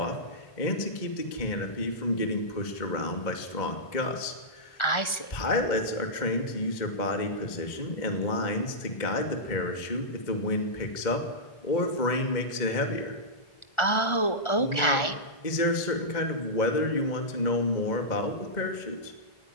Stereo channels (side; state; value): right; late; 1.4 ms